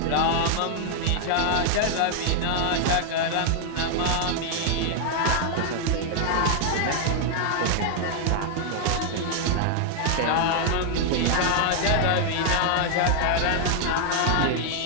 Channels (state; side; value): different; both; correlation 0.00